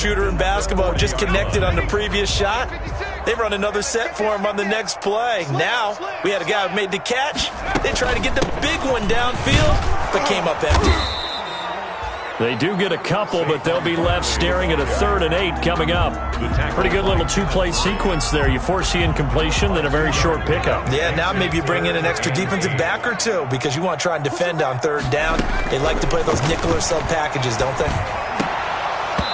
in basketball, just connected on the previous shot. They run another set for him on the next play. Now, we had a guy who made the catch. They tried to get the big one downfield, but came up empty. They do get a couple, but they'll be left staring at a 3rd and 8 coming up. Pretty good little 2-play sequence there. You force the incompletion, then a very short pickup. Yeah, now maybe you bring in an extra defensive back or two because you want to try and defend on 3rd down. They like to play those nickel or sub packages, don't they?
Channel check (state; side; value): identical; both; correlation 1.00